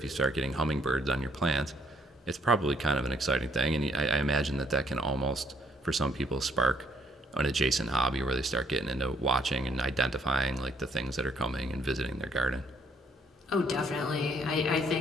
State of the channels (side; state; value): both; normal; correlation 0.66